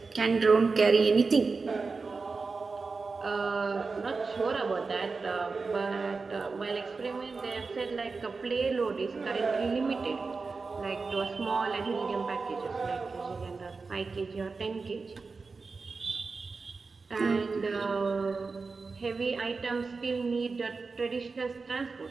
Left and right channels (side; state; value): left; quieter; 4.3 dB